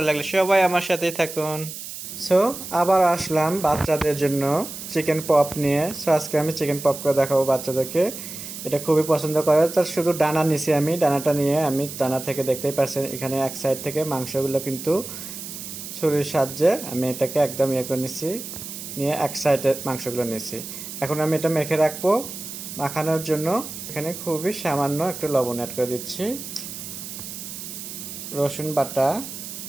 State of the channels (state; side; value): noise; right; hiss, 10 dB below the sound